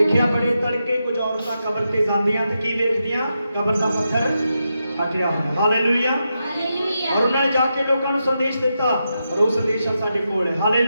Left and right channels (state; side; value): inverted; both; correlation -0.86